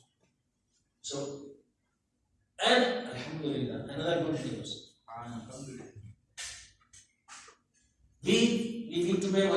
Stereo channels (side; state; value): both; identical; correlation 1.00